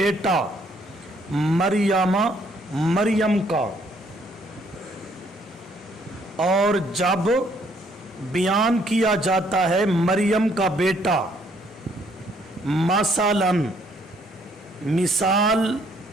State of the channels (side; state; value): both; normal; correlation 0.66